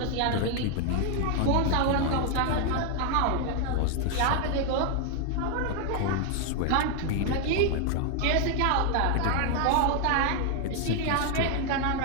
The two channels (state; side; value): different; both; correlation 0.00